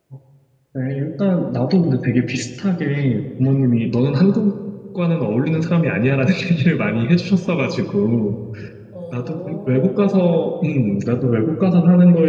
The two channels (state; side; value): identical; both; correlation 1.00